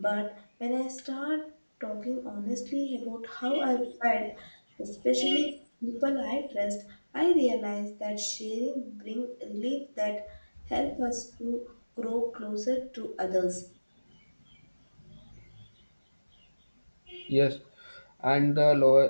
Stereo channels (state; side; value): inverted; both; correlation -1.00